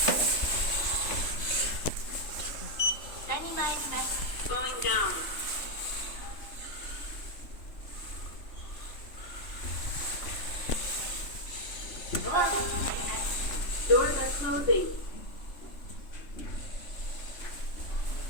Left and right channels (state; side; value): late; right; 3.3 ms